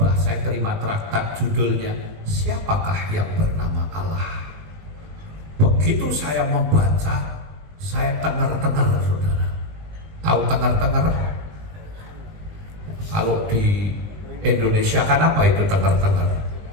saya terima traktat judulnya Siapakah yang bernama Allah. Begitu saya membaca, saya tengar-tengar saudara. Tahu tengar-tengar? Kalau di Indonesia kan apa itu tengar-tengar?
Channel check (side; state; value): left; late; 20 ms